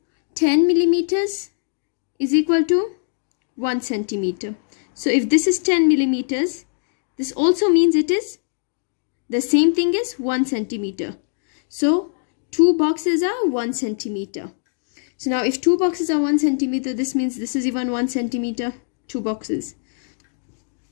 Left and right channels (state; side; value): silent; right; digital silence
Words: 10 millimeters is equal to 1 centimeter. So if this is 10 millimeters, this also means it is the same thing as 1 centimeter. So 2 boxes are 1 centimeter. So now if 2 boxes are 1 centimeter, this means this is even 1 centimeter, 2 boxes.